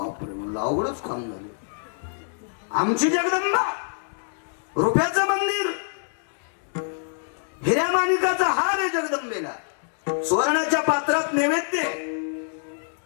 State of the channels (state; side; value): silent; right; digital silence